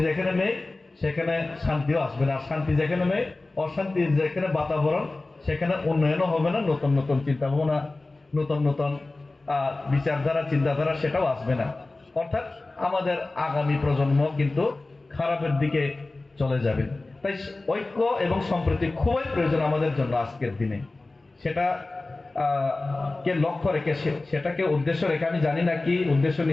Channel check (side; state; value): right; quieter; 3.2 dB